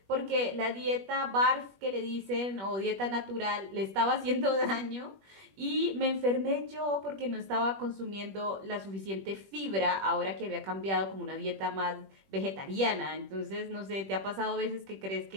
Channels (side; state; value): left; late; 21 ms